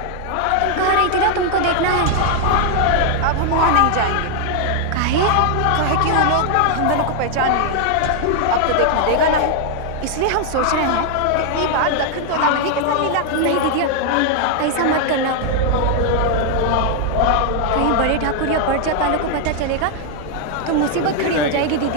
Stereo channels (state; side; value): different; both; correlation 0.00